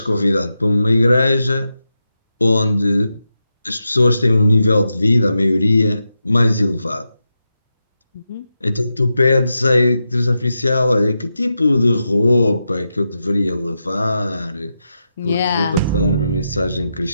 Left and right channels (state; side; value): inverted; both; correlation -0.88